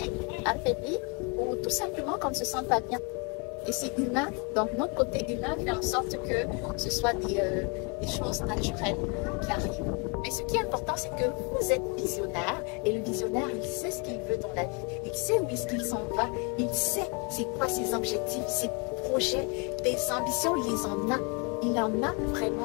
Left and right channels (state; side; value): quieter; right; 33.4 dB